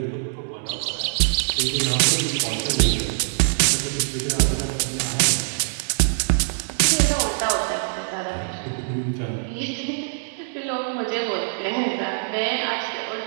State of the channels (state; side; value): silent; left; digital silence